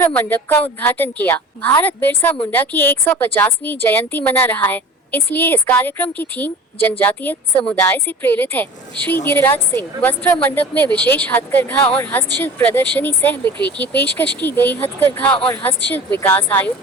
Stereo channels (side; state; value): both; normal; correlation 0.39